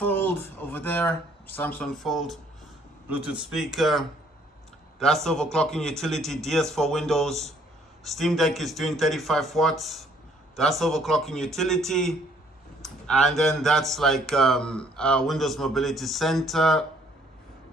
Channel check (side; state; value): both; normal; correlation 0.63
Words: over there, Samsung Fold. Bluetooth speaker. That's overclocking utility, DS for Windows. Steam Deck is doing 35 watts. That's overclocking utility. And then that's like Windows Mobility Center.